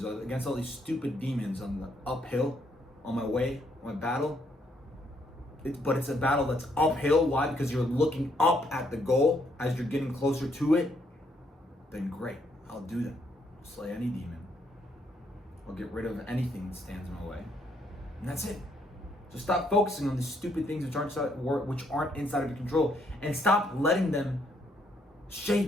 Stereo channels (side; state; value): both; normal; correlation 0.72